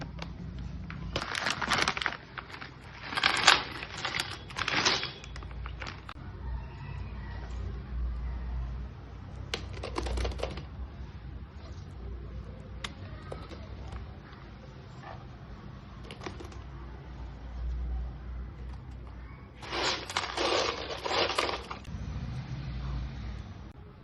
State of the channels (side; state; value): both; identical; correlation 1.00